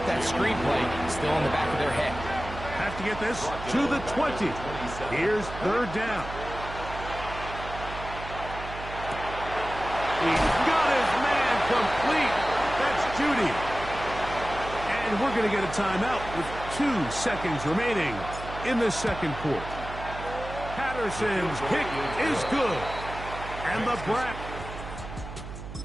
that screen play still in the back of their head. Have to get this to the 20. Here's 3rd down. He's got his man complete. That's Judy. And we're going to get a timeout with 2 seconds remaining in the 2nd quarter. Patterson's kick is good. And the Browns.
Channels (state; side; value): noise; right; hum, 11 dB below the sound